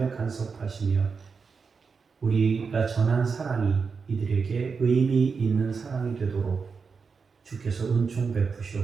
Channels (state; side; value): quieter; left; 5.3 dB